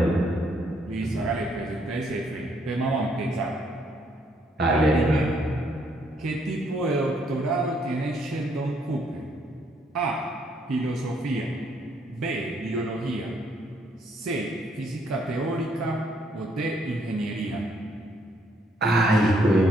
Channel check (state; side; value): normal; both; correlation 0.70